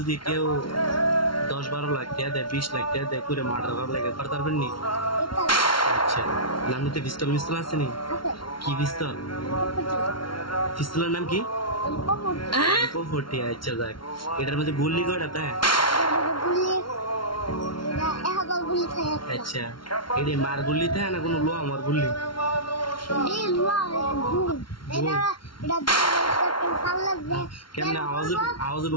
কেউ 10-12 লাখ টাকা দেয় 20 লাখ টাকা দেয় করে মার্ডার করার লাগে করতে পারবেন নি? আচ্ছা আপনি পিস্তল মিস্তল আছে নি? কি পিস্তল? পিস্তলের নাম কি? পপটি। আচ্ছা যাক এটার মধ্যে গুলি কয়টা তাই? আচ্ছা এটা মার গুলি তাই না কোনো লোয়া আমার গুলি? কেমনে আওয়াজ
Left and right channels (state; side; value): late; right; 0.73 ms